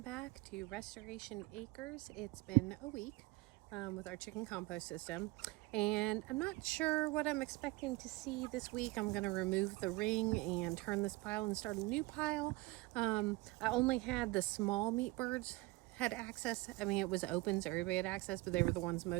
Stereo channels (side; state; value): left; quieter; 21.5 dB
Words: back to Restoration Acres. It's been a week with our chicken compost system, and I'm not sure what I'm expecting to see this week. I'm going to remove the ring and turn this pile and start a new pile. I only had the small meat birds had access. I mean, it was open, so everybody had access, but they were the ones